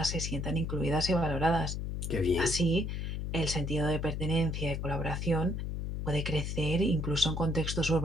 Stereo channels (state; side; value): noise; left; hum, 3 dB below the sound